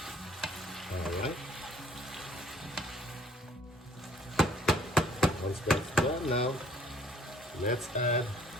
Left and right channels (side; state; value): both; normal; correlation 0.60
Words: Alright. Once that's done now, let's add